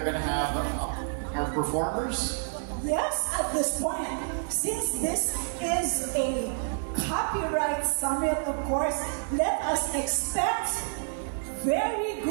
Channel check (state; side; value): silent; left; digital silence